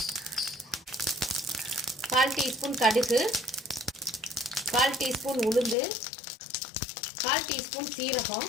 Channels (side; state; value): right; drops out; at 5.8 s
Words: 1/4 டீஸ்பூன் கடுகு, 1/4 டீஸ்பூன் உளுந்து, 1/4 டீஸ்பூன்